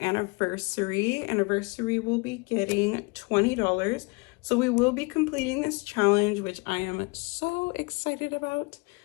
Anniversary will be getting $20. So we will be completing this challenge, which I am so excited about.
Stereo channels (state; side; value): quieter; right; 28.9 dB